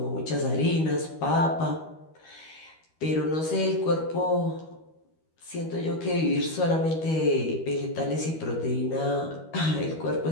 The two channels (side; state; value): right; late; 13 ms